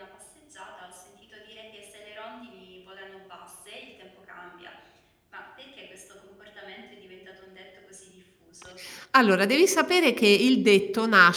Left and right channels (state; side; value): identical; both; correlation 1.00